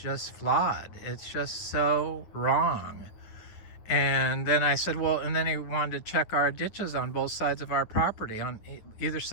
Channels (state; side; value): late; right; 9.6 ms